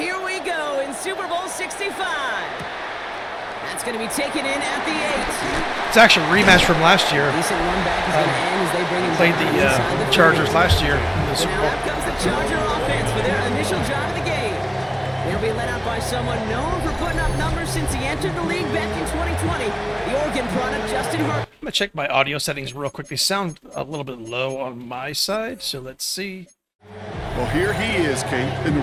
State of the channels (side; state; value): both; identical; correlation 1.00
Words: we go in Super Bowl 65. That's going to be taken in at the 8. It's actually a rematch from last year. Decent run back is going to end as they bring him Played the Chargers last year in the Super Bowl. Now out comes the Charger offense for their initial drive of the game. They'll be led out by someone known for putting up numbers since he entered the league back in 2020. The Oregon product, Justin Herbert. I'm going to check my audio settings real quick. They sound a little bit low on my side, so let's see. Well, here he is, Kate, in the